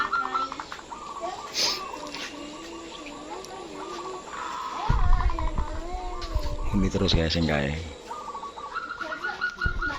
Ini terus ya sing kae.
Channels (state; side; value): identical; both; correlation 1.00